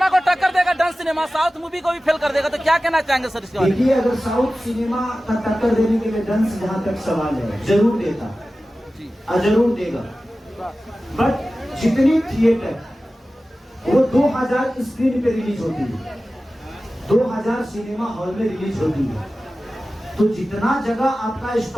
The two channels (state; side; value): normal; both; correlation 0.95